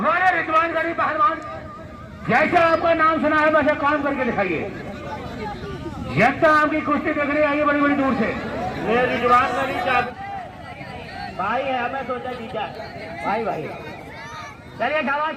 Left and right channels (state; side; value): identical; both; correlation 1.00